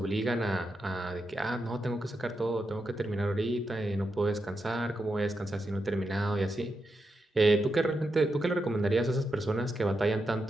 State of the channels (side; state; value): both; normal; correlation 0.86